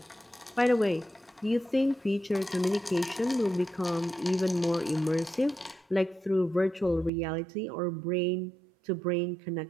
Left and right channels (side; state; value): left; drops out; at 7.1 s